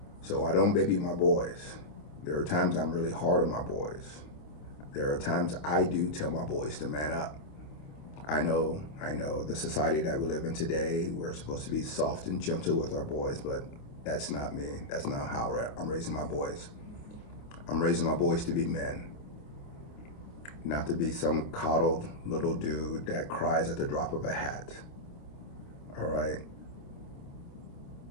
So I don't baby my boys. There are times I'm really hard on my boys. There are times I do tell my boys to man up. I know the society that we live in today, we're supposed to be soft and gentle with our boys, but that's not me. That's not how I'm raising my boys. I'm raising my boys to be men, not to be some coddled little dude that cries at the drop of a hat. All right?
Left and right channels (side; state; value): right; late; 27 ms